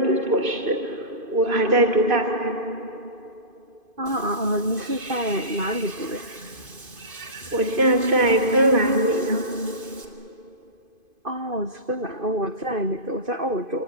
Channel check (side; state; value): left; late; 2.5 ms